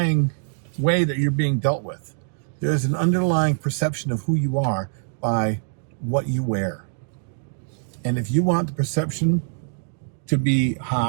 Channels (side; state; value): left; silent; digital silence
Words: way that you're being dealt with. There's an underlying perception of who you are by what you wear. And if you want the perception to be